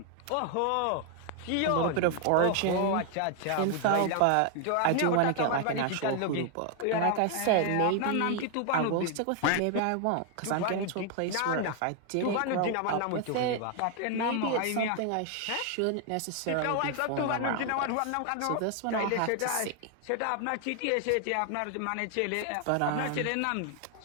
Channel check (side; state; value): both; different; correlation 0.00